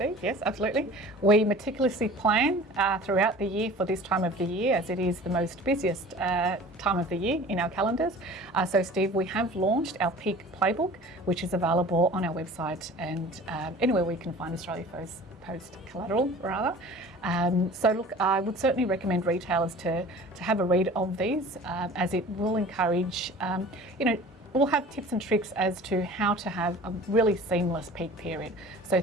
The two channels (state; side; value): normal; both; correlation 0.43